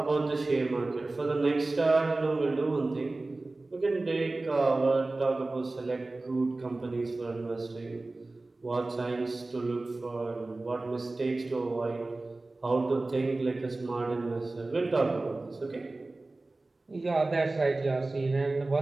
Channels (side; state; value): left; quieter; 3.1 dB